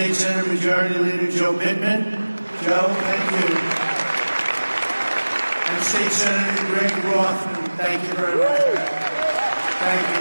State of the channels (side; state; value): both; inverted; correlation -1.00